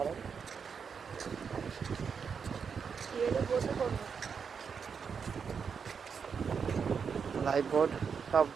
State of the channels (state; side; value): quieter; left; 6.3 dB